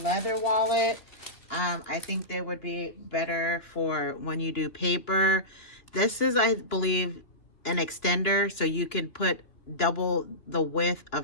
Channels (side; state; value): right; late; 2.9 ms